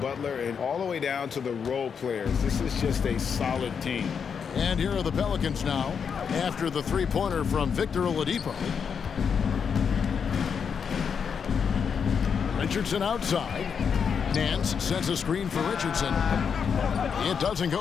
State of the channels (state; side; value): quieter; right; 6.7 dB